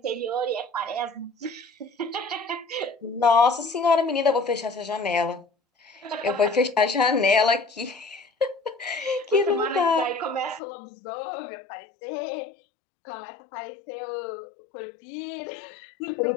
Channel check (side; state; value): right; drops out; at 10.6 s